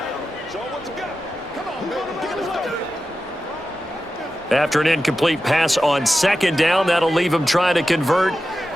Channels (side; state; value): both; normal; correlation 0.92